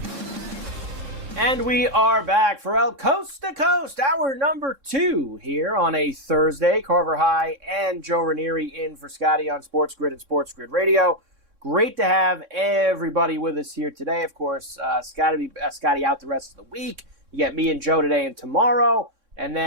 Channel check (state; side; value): late; left; 3.9 ms